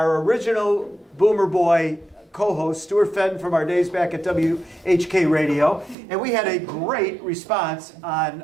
original Boomer Boy co-host, Stuart Fenton, from our days back at WHK Radio, and we had a great response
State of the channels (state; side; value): drops out; left; at 6.0 s